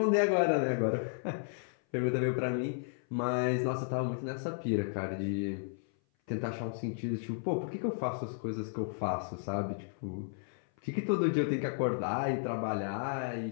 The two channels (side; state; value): right; silent; 55 dB below the other